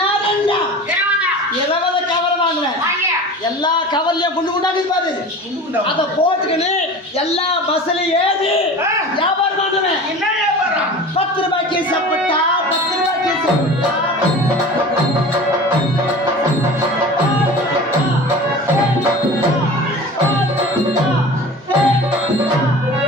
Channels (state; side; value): normal; both; correlation 0.37